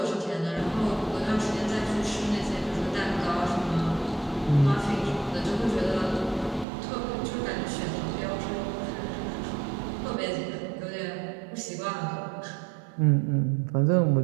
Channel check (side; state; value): left; drops out; at 6.7 s